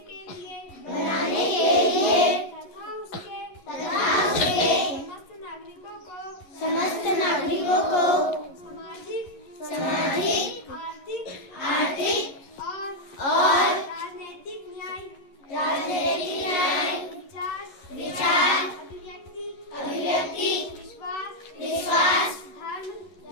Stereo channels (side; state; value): right; late; 11 ms